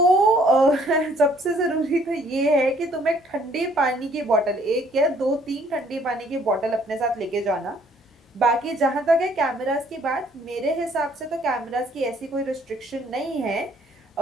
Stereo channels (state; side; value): normal; both; correlation 0.62